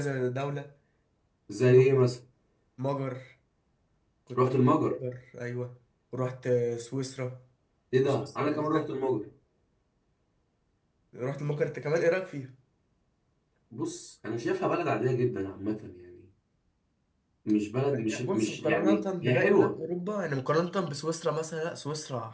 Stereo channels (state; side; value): identical; both; correlation 1.00